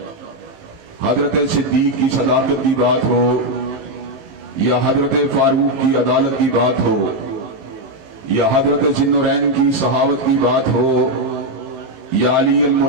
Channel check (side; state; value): left; late; 19 ms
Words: حضرت صدیق کی صداقت کی بات ہو یا حضرت فاروق کی عدالت کی بات ہو یا حضرت ذی النورین کی صحاوت کی بات ہو یا علی